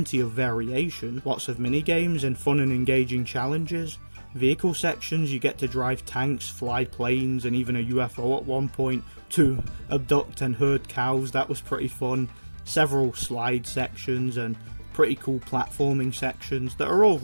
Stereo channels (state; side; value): inverted; both; correlation -1.00